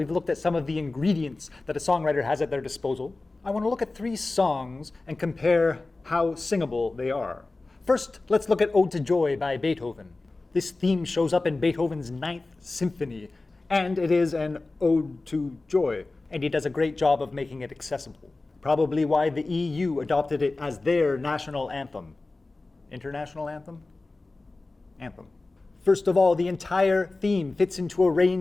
looked at some of the ingredients that a songwriter has at their disposal, I want to look at 3 songs and compare how singable they are. First, let's look at Ode to Joy by Beethoven. This theme shows up in Beethoven's 9th Symphony, and it is an ode to joy, and he does a great job of making it accessible. Probably why the EU adopted it as their national anthem. International anthem? Anthem. First of all, the entire theme fits into a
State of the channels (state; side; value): quieter; right; 3.3 dB